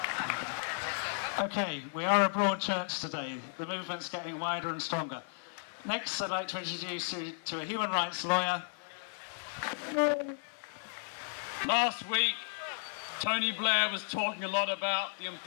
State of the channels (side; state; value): right; silent; 55 dB below the other